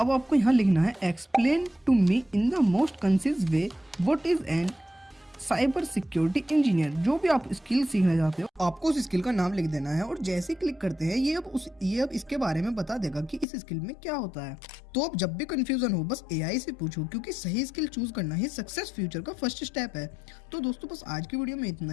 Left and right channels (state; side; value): drops out; right; at 13.5 s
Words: अब आपको यहाँ लिखना है explain to me in the most concise way what is an cyber security engineer. जो भी आप स्किल सीखना चाहते हो आपको उस स्किल का नाम लिख देना है, और जैसे ही क्लिक करते हैं ये अब इसके बारे में बता देगा कि इस स्किल में क्या होता है। तो अब जब भी कंफ्यूजन हो बस एआई से पूछो, क्योंकि सही स्किल चूज करना ही सक्सेस फ्यूचर का फर्स्ट स्टेप है। तो दोस्तों बस आज की वीडियो में इतना